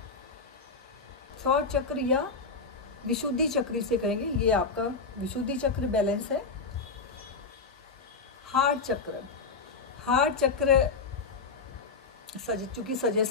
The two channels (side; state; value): right; quieter; 4.4 dB